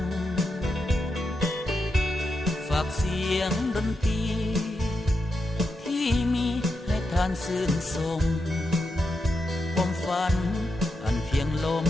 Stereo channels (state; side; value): normal; both; correlation 0.85